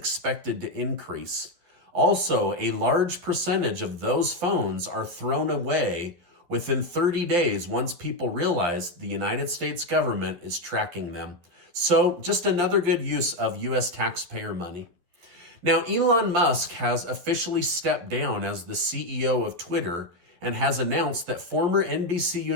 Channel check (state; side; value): late; left; 12 ms